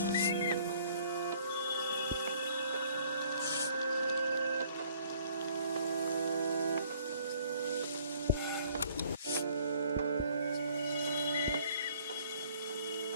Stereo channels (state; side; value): inverted; both; correlation -0.59